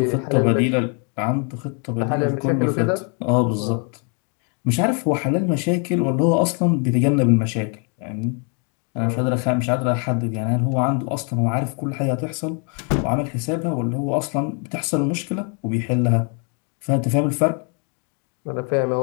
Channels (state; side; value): quieter; right; 38.7 dB